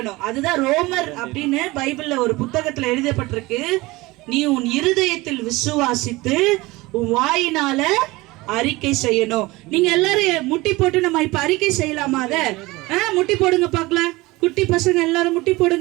அதுதான் ரோமர் அப்படின்னு பைபிள்ல ஒரு புத்தகத்துல எழுதப்பட்டிருக்கு. நீ உன் இருதயத்தில் விசுவாசித்து உன் வாயினால அறிக்கை செய்யணும். நீங்க எல்லாரும் முட்டி போட்டு நம்ம இப்ப அறிக்கை செய்யலாமா? அத முட்டி போடுங்க பார்க்கலாம். குட்டி பசங்க எல்லாரும் முட்டி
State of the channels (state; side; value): quieter; left; 21.2 dB